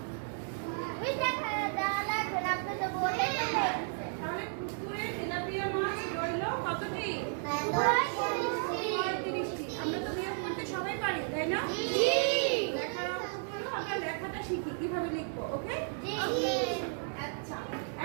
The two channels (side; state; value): left; silent; 56 dB below the other